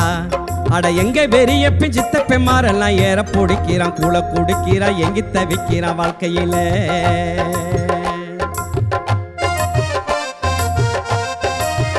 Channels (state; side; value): identical; both; correlation 1.00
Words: அட எங்க பெரியப்பன் சித்தப்பன் மாரெல்லாம் ஏற பிடிக்கிறான், கூழ குடிக்கிறான், எங்கி தவிக்கிறான் வாழ்க்கையில.